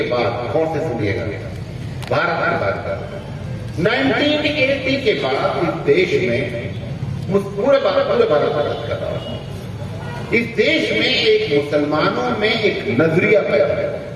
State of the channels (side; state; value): both; identical; correlation 1.00